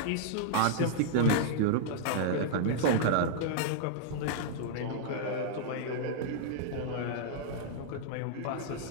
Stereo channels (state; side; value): different; both; correlation -0.02